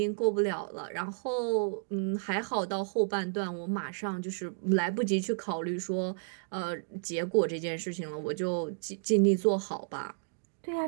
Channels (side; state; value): left; silent; digital silence